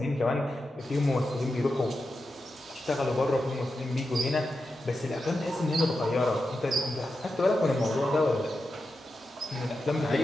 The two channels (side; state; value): both; normal; correlation 0.90